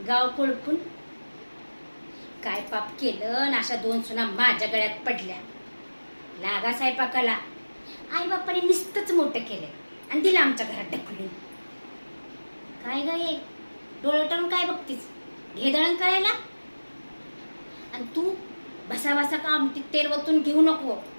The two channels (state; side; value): inverted; both; correlation -1.00